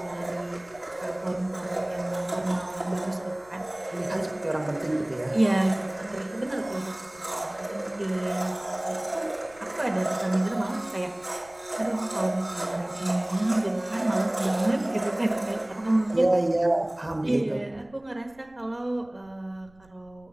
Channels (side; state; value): right; noise; rumble, 29 dB below the sound